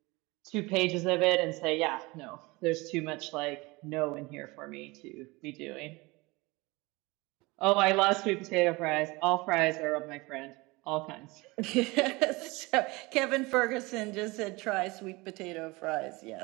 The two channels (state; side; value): quieter; left; 23.7 dB